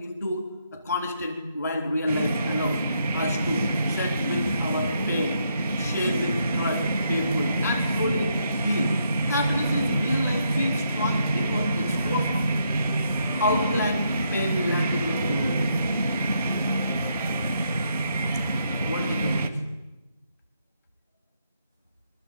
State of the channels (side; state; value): both; inverted; correlation -0.76